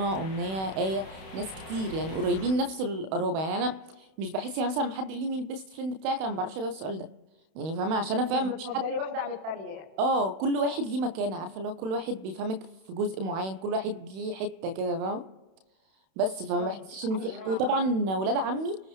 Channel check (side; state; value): left; late; 31 ms